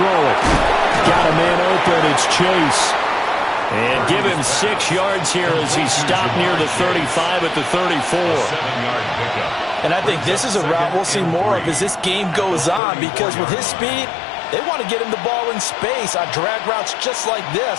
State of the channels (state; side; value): drops out; right; at 12.8 s